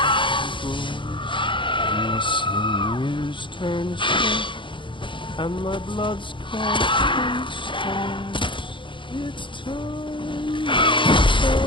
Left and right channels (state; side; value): late; right; 0.24 ms